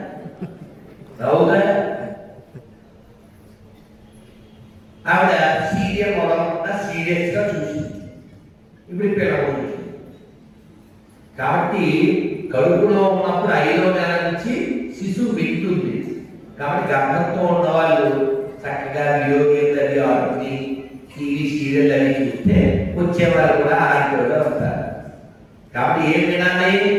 రావుగా. ఆవిడ సీరియల్ మొదలకుండా సీరియస్ గా చూసింది. ఇప్పుడు పిల్లలు చూసింది కాబట్టి కడుపులో ఉన్నప్పుడు 5వ నెల నుంచి శిశువు వింటుంది. కాబట్టి గర్భంతో ఉన్న వాళ్ళు చక్కగా వీడియో గేమ్లు అవి ఆడుకుని టీవీ సీరియల్ అవి చూస్తే వచ్చేవాళ్ళు కూడా ఆడుకోగా వస్తారు. కాబట్టి ఏం వినాలి?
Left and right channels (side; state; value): both; identical; correlation 1.00